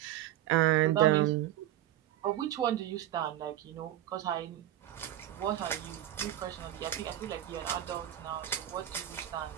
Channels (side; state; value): left; quieter; 12.9 dB